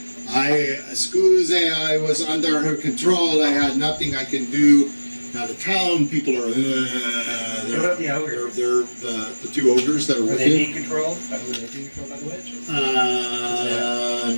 Excuse, I was under her control, I had nothing I can do. Now the town people are, What about the ogres? they're the two ogres that are Are with they him. being controlled? Were they being controlled by the witch?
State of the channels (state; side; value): inverted; both; correlation -1.00